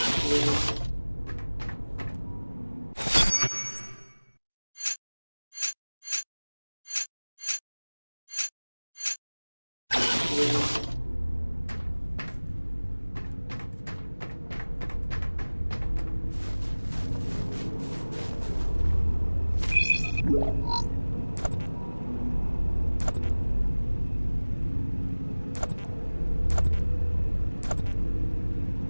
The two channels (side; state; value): both; inverted; correlation -1.00